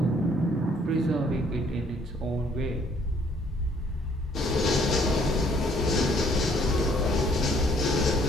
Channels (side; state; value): both; normal; correlation 0.63